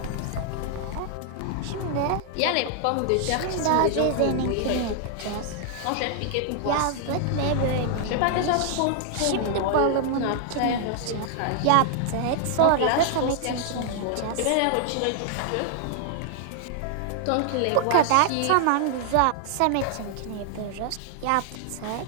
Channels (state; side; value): different; both; correlation 0.00